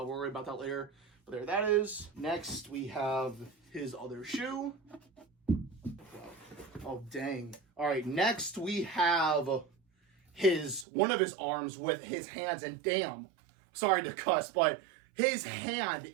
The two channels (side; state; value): left; drops out; at 10.9 s